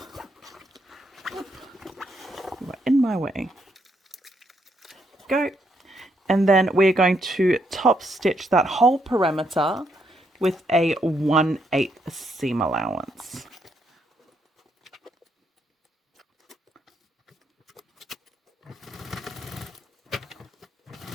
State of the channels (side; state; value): both; normal; correlation 0.76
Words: You are in my way. Go. And then we're going to top stitch that whole perimeter with a 1/8 seam allowance.